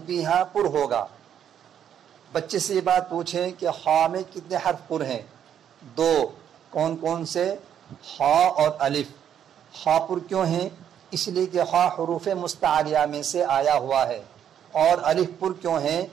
بھی یہاں پر ہوگا. بچے سے یہ بات پوچھیں کہ خا میں کتنے حرف پر ہیں؟ دو کون کون سے؟ خا اور الف۔ خا پر کیوں ہیں؟ اس لیے کہ خا حروف مستعلیہ میں سے آیا ہوا ہے، اور الف پر کیوں ہیں؟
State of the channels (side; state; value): left; quieter; 9.3 dB